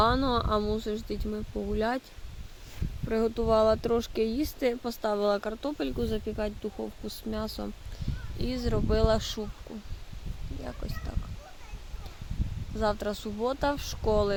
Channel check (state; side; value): identical; both; correlation 1.00